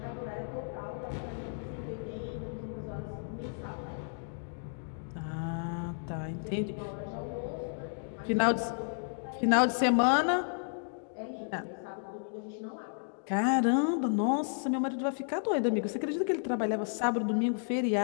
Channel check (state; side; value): silent; right; digital silence